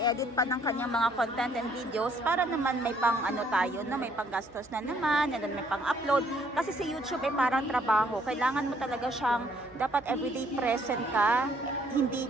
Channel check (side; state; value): right; noise; hum, 26 dB below the sound